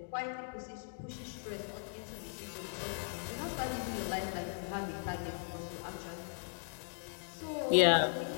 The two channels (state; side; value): silent; right; digital silence